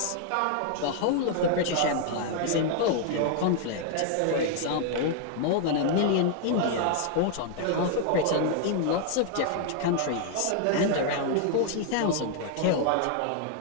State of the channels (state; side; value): different; both; correlation 0.00